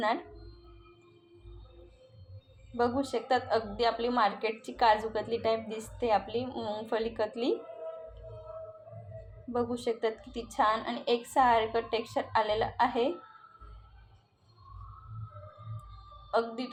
बघू शकतात अगदी आपली मार्केटची काजू कतली टाईप दिसते, आपली मूंगफली कतली. बघू शकतात किती छान आणि एकसारखं टेक्स्चर आलेलं आहे. अगदी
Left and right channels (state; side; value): identical; both; correlation 1.00